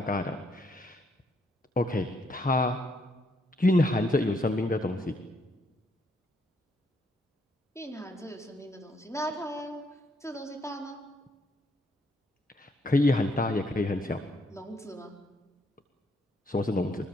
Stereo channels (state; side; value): normal; both; correlation 0.72